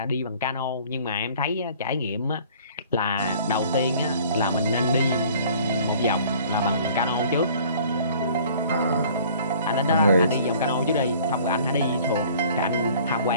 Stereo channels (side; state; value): both; inverted; correlation -0.52